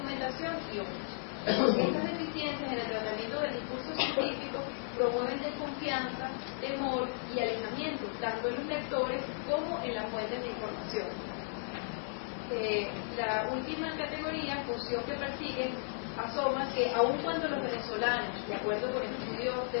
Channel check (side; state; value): right; silent; 55 dB below the other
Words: y otros. Estas deficiencias en el tratamiento del discurso científico promueven desconfianza, temor y alejamiento, tanto en los lectores como en las fuentes de información. La última categoría, función que persiguen, asoma que aun cuando los venezolanos, de acuerdo con estudios de